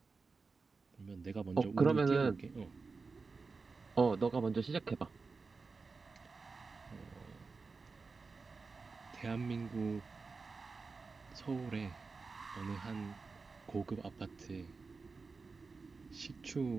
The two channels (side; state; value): left; quieter; 4.4 dB